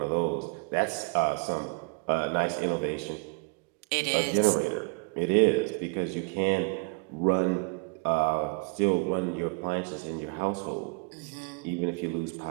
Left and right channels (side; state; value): left; quieter; 33.2 dB